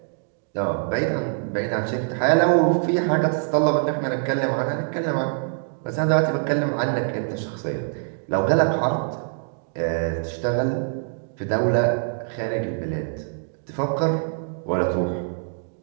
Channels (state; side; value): silent; left; digital silence